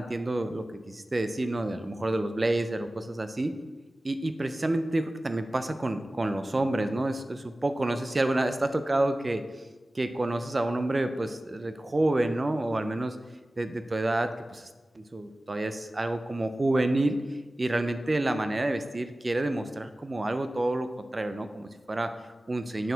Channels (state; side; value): normal; both; correlation 0.97